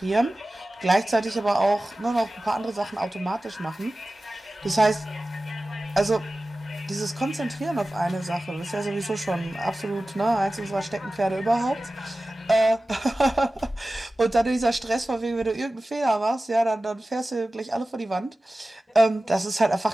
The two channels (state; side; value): normal; both; correlation 0.96